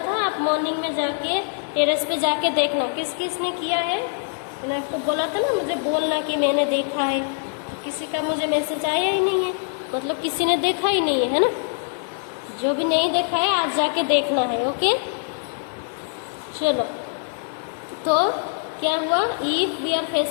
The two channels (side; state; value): right; silent; digital silence